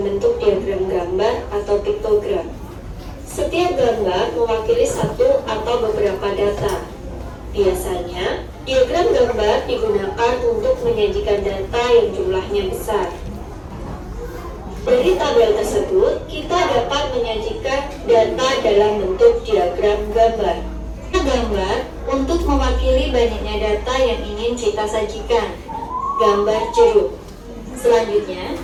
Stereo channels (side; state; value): both; identical; correlation 1.00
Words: bentuk diagram gambar atau piktogram. Setiap gambar mewakili satu atau beberapa data. Biasanya, diagram gambar digunakan untuk menyajikan data yang jumlahnya besar. Dari tabel tersebut, kita dapat menyajikan data dalam bentuk diagram gambar. Gambar untuk mewakili banyaknya data yang ingin kita sajikan. Gambar jeruk. Selanjutnya,